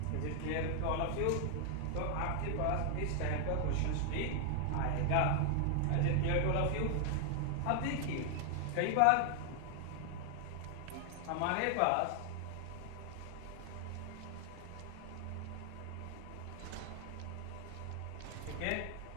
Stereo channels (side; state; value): both; different; correlation 0.00